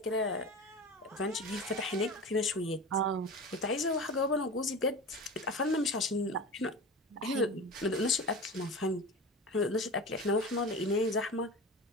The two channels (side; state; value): both; normal; correlation 0.30